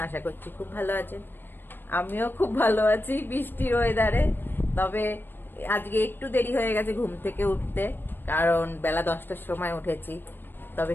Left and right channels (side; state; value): right; late; 0.096 ms